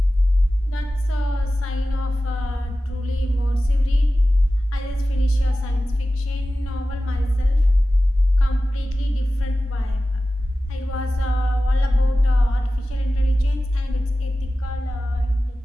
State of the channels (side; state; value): both; normal; correlation 0.95